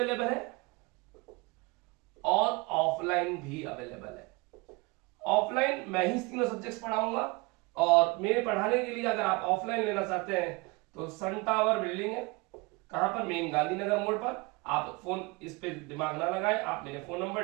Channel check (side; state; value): left; quieter; 26.0 dB